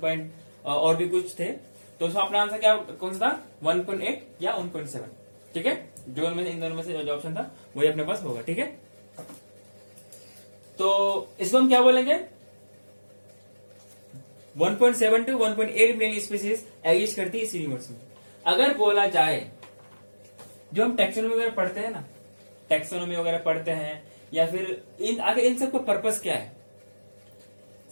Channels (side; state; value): both; inverted; correlation -1.00